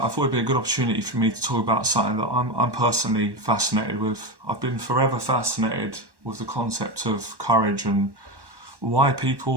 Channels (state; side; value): late; left; 1.1 ms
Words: thought it'd be a good opportunity for me to talk about something that I'm personally fascinated with. I've been forever fascinated with the concept of courage and why